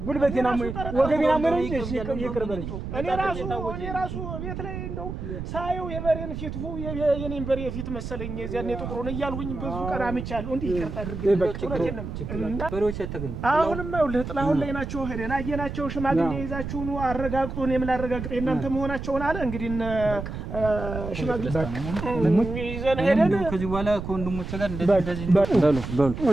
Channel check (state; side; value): noise; right; rumble, 7 dB below the sound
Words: ጉልበቴን አሞኝ ወገቤን አሞኝ ነው እንጂ ይቅር በለኝ። እኔ ራሱ ቤት ላይ እንደው ሳየው የበሬን ፊት የኔን በሬ ፊት መሰለኝ የዚያን የጥቁሩን እያልሁኝ ብዙ ቀን አምቻለሁ። እንዴ ይቅርታ አድርገኝ በሬዎች ተገኙ። አሁንማ ይኸውልህ ጥላሁን ላይ ናቸው። ሄደን አየናቸው። ሽማግሌ ይዛችሁ ነው አረጋግጡ። እኔም ላረጋግጥ እናንተ መሆናቸውን አለ። እንግዲህ ሽማግሌ ይዘን ሄደን ከዚህ በኋላ ወንድሞቼ ጋር እንደዚህ በሉ